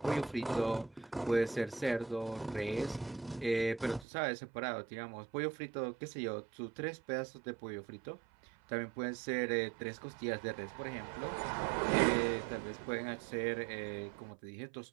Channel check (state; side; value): drops out; left; at 4.0 s